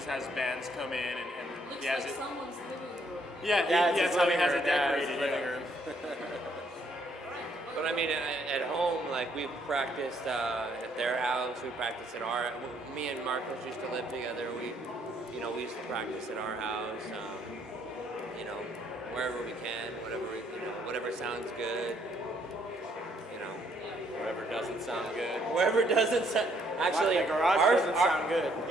has bands come in and Looks he has like it. someone's living room. Yeah, it's that's his how he living has room, it yeah, it's decorated. his living yeah. room. Right. But I mean, at home, like we've practiced at their house. We practiced at our. Me and Marcos used to live together. We used to practice at our house. Wherever we can, whatever sounds good. Whatever doesn't sound good. Wherever doesn't sound. Actually, the garage doesn't sound good.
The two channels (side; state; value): both; normal; correlation 0.69